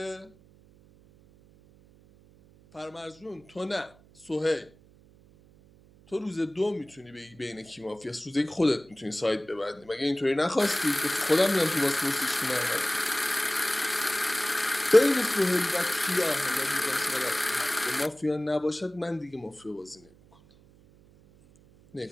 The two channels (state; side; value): noise; right; hum, 27 dB below the sound